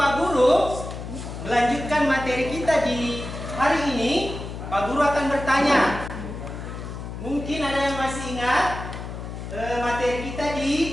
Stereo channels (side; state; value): left; noise; hum, 8 dB below the sound